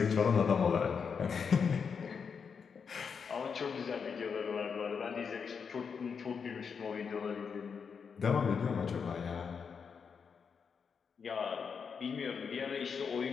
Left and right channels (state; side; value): quieter; right; 6.1 dB